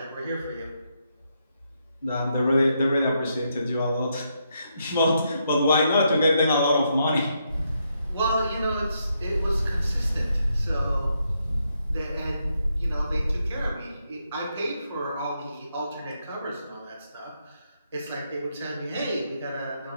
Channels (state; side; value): inverted; both; correlation -0.79